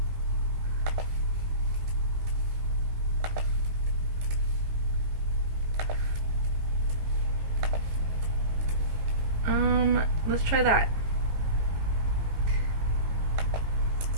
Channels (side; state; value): left; late; 18 ms